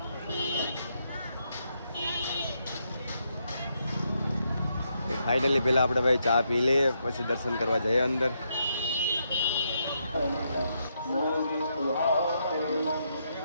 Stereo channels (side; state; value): both; inverted; correlation -0.80